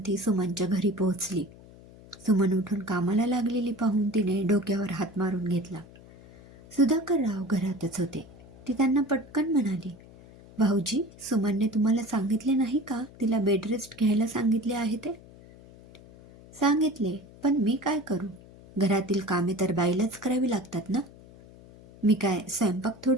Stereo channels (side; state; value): left; noise; hum, 21 dB below the sound